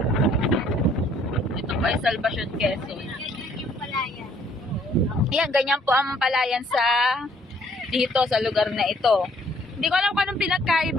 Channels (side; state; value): both; normal; correlation 0.62